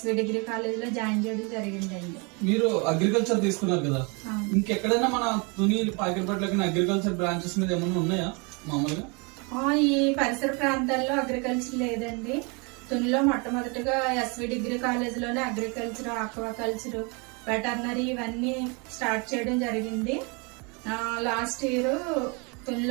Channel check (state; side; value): quieter; left; 31.4 dB